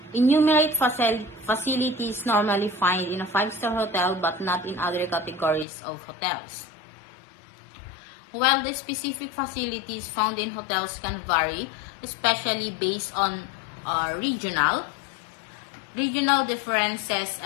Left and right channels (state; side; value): drops out; right; at 5.7 s